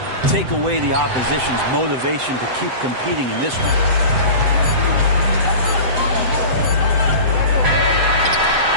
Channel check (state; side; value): late; left; 7.8 ms